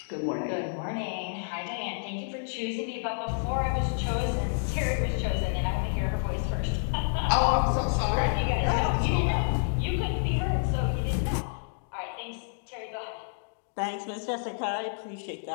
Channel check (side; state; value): right; silent; digital silence